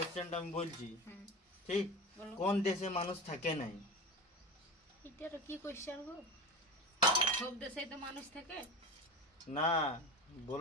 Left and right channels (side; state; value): both; normal; correlation 0.27